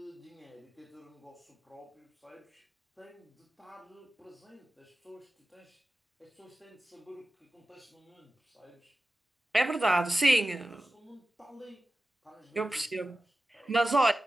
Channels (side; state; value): both; normal; correlation 0.95